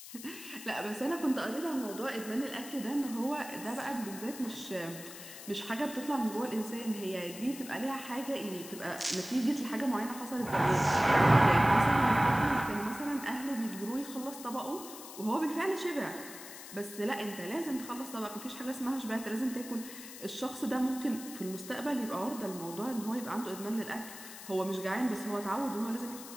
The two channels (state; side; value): noise; left; hiss, 13 dB below the sound